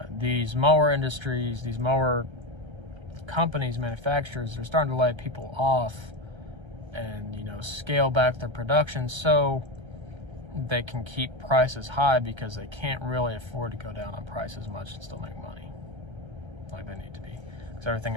These mower industries, these mower companies, manufacturers, they're starting to lay people off and, you know, scale back their production so they can keep prices high, because they can't really afford to go down on price as much and still make money like they need to be, because everything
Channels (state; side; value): late; left; 1.3 ms